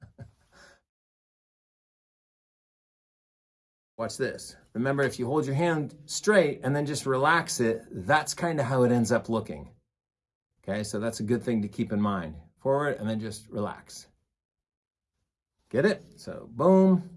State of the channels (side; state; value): both; identical; correlation 1.00